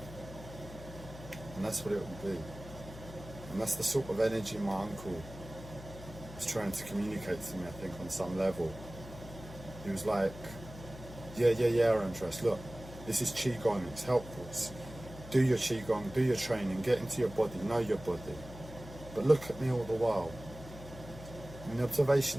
and that's what it will be. And that's the sort of energy my uncle was trying to communicate to me, I think, on some level. He was like, yeah, Andres, look, this is Qigong, it's helpful. Do your Qigong, do your training, get into your body, know your body. But look at me all the while. In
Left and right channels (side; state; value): left; noise; hum, 14 dB below the sound